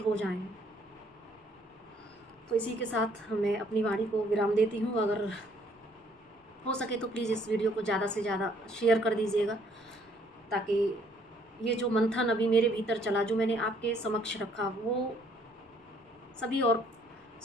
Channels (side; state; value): both; normal; correlation 0.63